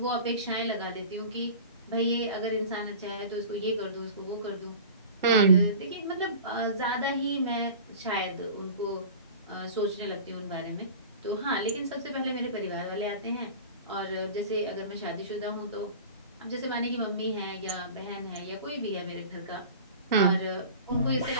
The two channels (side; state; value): both; inverted; correlation -0.38